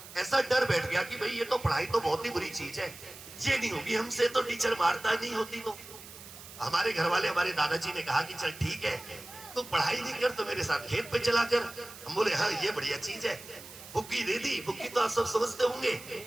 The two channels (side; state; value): right; noise; hiss, 16 dB below the sound